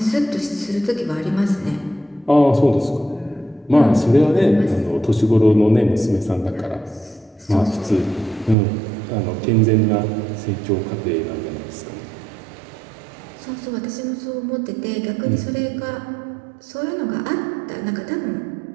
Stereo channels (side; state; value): left; drops out; at 8.6 s